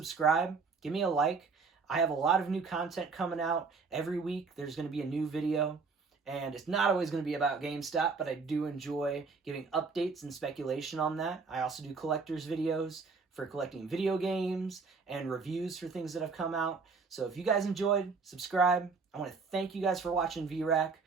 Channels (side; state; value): left; quieter; 4.7 dB